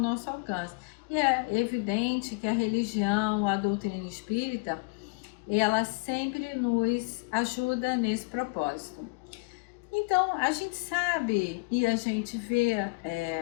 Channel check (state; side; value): quieter; right; 29.5 dB